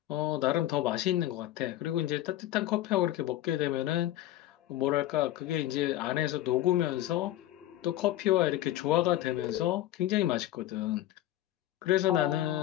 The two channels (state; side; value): quieter; right; 14.1 dB